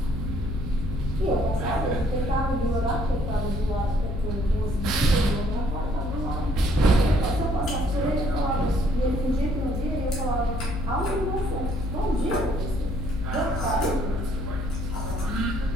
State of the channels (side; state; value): left; noise; hum, 4 dB below the sound